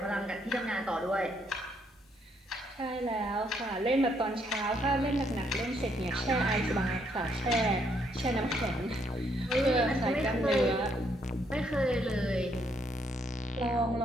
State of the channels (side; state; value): both; normal; correlation 0.72